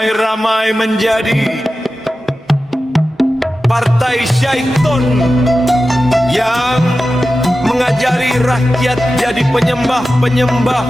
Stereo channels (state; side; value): normal; both; correlation 0.93